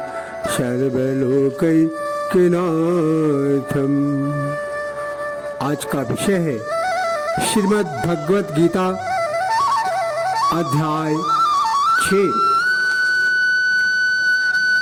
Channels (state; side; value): identical; both; correlation 1.00